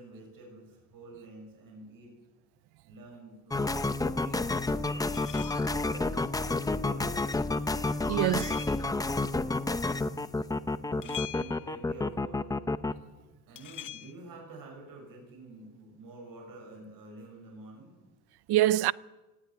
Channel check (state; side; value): normal; both; correlation 0.47